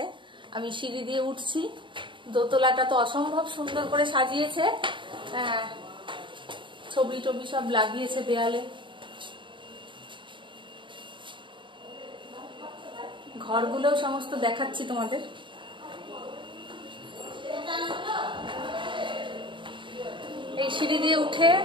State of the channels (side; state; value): left; late; 0.24 ms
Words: আমি সিঁড়ি দিয়ে উঠছি। দোতলাটা তো অসম্ভব সুন্দর করে সাজিয়েছে, ছবি টবি সব লাগিয়েছে দেয়ালে। ঘরগুলোও সমস্ত দেখাচ্ছি তোমাদের। এই সিঁড়ি দিয়ে উঠে